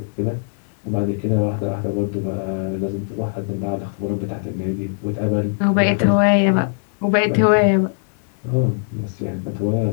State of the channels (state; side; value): silent; right; digital silence